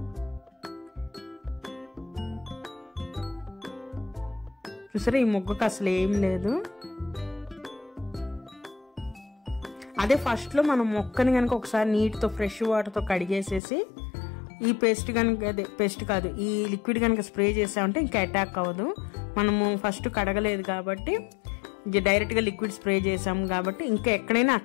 చూసారా, ఈ మొగ్గకు అసలు ఏం లేదు. అదే ఫస్ట్లో మనం మొక్కని కనుక ఒకసారి నీటితో ఫ్రెష్ వాటర్తో కడిగేసేసి ఈ పేస్ట్ కనుక, అదే పేస్ట్ కాదు, ఈ లిక్విడ్ కనుక స్ప్రే చేసామంటే ఇంకా అటాక్ అవ్వదు. మనము ఫస్ట్ కడగలేదు కాబట్టి డైరెక్ట్గా లిక్విడ్ స్ప్రే చేసాము కాబట్టి ఇంకా ఎక్కడైనా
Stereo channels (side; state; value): right; drops out; at 13.6 s